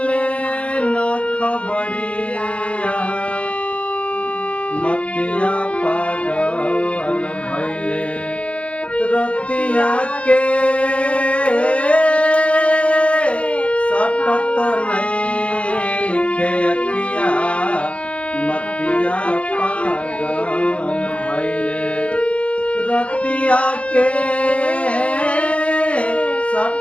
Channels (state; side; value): late; right; 0.062 ms